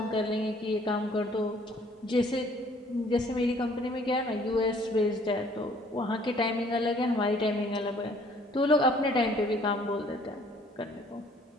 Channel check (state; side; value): normal; both; correlation 0.58